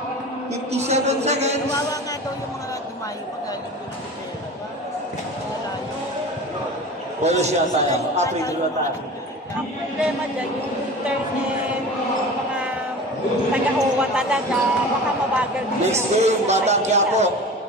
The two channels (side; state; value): both; normal; correlation 0.36